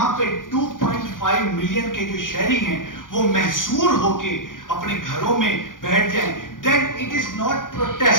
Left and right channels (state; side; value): late; right; 0.89 ms